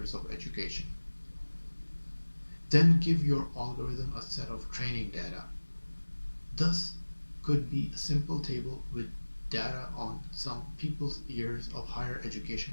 of education. Then give your algorithm a set of training data. Thus could be a simple table with data on some people's years of higher education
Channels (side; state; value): both; inverted; correlation -1.00